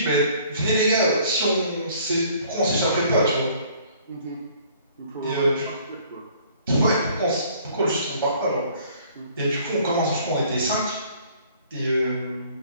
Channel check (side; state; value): both; inverted; correlation -0.56